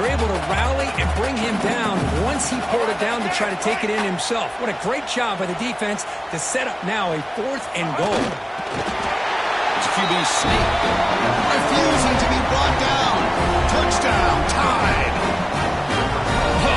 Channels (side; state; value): both; identical; correlation 1.00